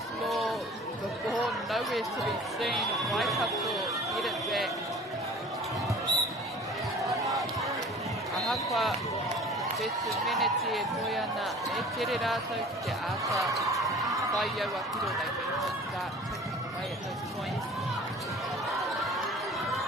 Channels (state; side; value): normal; both; correlation 0.45